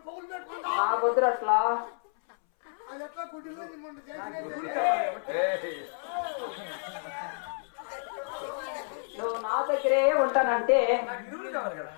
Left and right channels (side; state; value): right; silent; 58 dB below the other